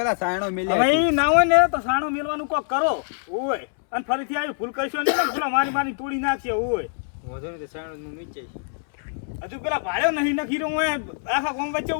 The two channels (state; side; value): silent; right; 63 dB below the other